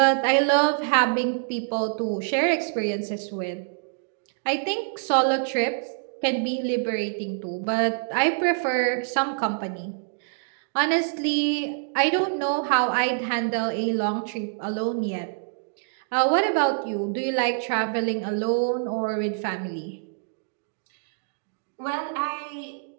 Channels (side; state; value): left; silent; digital silence